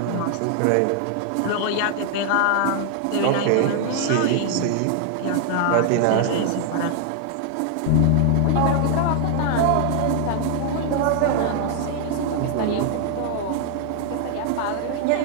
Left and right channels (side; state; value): both; different; correlation 0.00